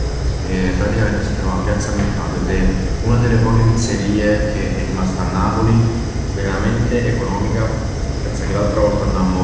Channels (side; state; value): both; identical; correlation 1.00